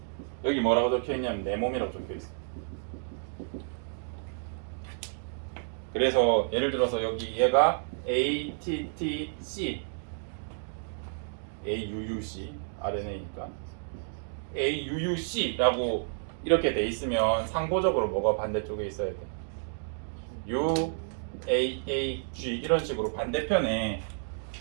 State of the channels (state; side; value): silent; left; digital silence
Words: 여기 뭐라고 적혀 있냐면 내 몸이라고 적혀 있어. 그래서 예를 들어서 여기 얘가 ATTC, AUUC RNA니까 AUUC라고 이렇게 돼 있으면 상호적으로 뭐가 반대쪽에 있어야 돼? UAAG 이런 식으로 반대편에